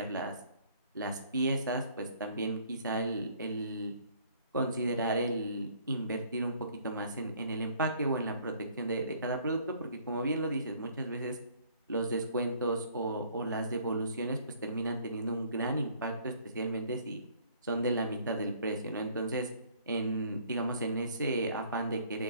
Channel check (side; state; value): both; inverted; correlation -0.59